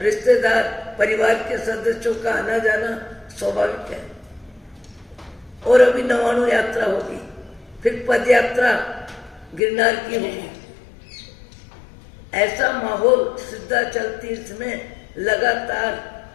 रिश्तेदार परिवार के सदस्यों का आना जाना स्वाभाविक है। और अभी 99 यात्रा होगी, फिर पद यात्रा गिरनार की होगी। ऐसा माहौल सिद्धाचल तीर्थ में लगातार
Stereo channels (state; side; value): drops out; right; at 9.6 s